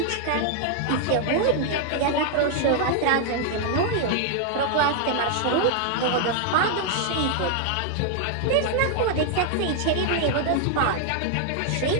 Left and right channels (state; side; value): different; both; correlation 0.00